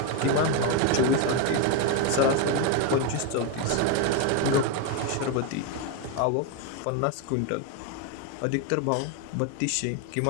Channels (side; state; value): both; different; correlation 0.02